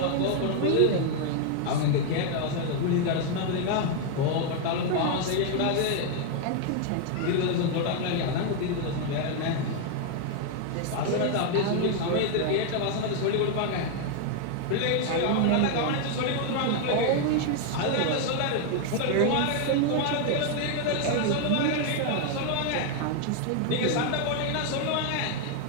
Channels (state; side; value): different; both; correlation 0.00